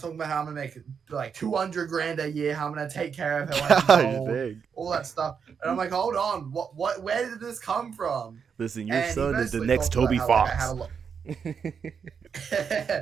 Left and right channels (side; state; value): left; quieter; 6.6 dB